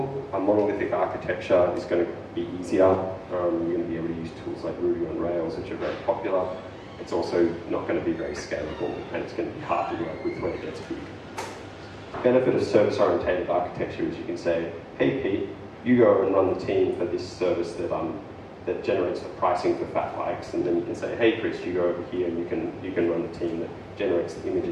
a monolithic architecture is going to be easier. You're going to be able to use tools like Ruby on Rails, which are very popular. It's also not going to be very scalable, and it's going to be hard to work with when it gets big. The benefit of service-oriented architecture is you can say, hey Pete, you go and run the team for this service that generates the pricing for fat bikes, and then you can say, hey Chris, you go over here and you can run the team that generates the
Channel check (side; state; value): both; identical; correlation 1.00